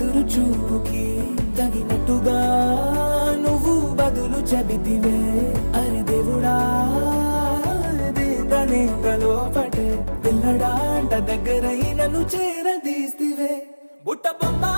చూపుకి తగినట్టుగా నువ్వు బదులు చెబితివే అరే దేవుడా దేదనే లోపటే పిల్లడా అంట దగ్గరై నన్ను చేరదీస్తివే బుట్ట బొమ్మ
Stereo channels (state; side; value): inverted; both; correlation -1.00